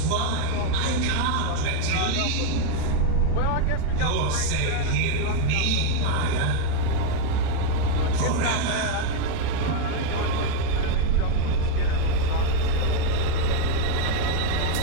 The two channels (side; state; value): both; different; correlation 0.00